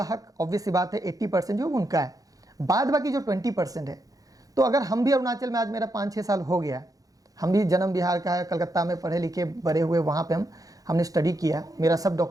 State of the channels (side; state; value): left; late; 0.17 ms